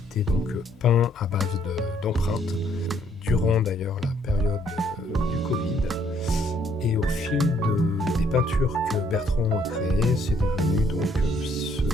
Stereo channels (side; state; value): both; normal; correlation 0.67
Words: donc peint à base d'empreintes durant d'ailleurs la période du Covid, et au fil des peintures que Bertrand a créées, c'est devenu donc ce